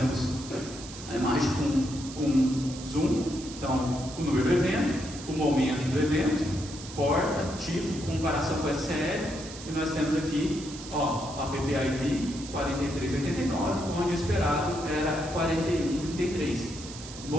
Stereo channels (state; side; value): noise; right; hiss, 13 dB below the sound